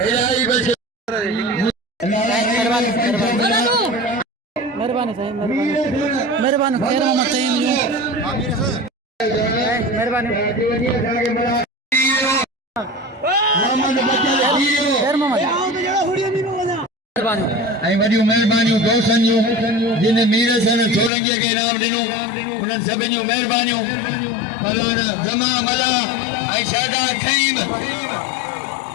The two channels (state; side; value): drops out; right; at 21.1 s